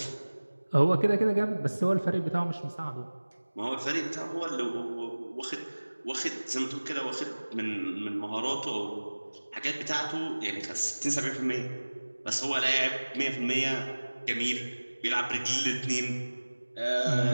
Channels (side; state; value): both; inverted; correlation -1.00